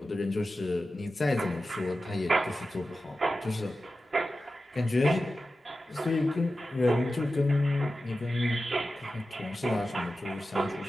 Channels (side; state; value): both; normal; correlation 0.93